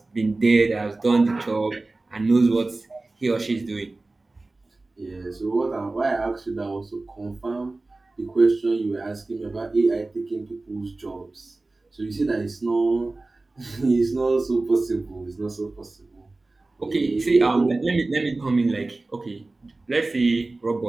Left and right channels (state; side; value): quieter; left; 3.2 dB